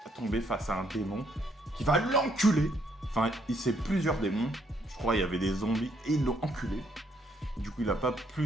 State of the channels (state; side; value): normal; both; correlation 0.71